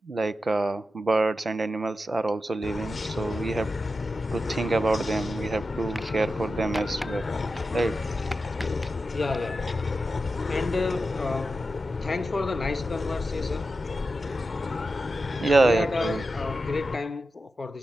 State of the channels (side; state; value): both; normal; correlation 0.91